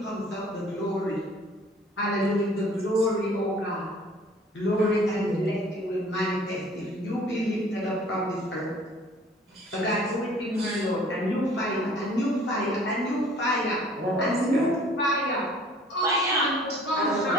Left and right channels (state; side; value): normal; both; correlation 0.53